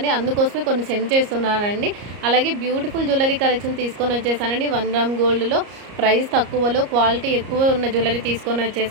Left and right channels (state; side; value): late; left; 34 ms